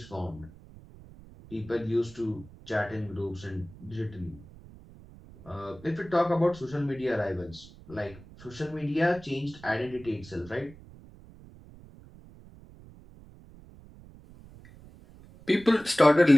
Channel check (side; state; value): right; noise; rumble, 20 dB below the sound